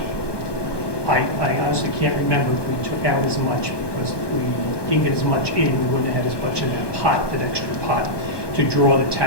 I honestly can't remember if we took out as much, because if we didn't get as much in, we wouldn't have had as much in that pot, that extra pot, to draw the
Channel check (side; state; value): right; late; 1.2 ms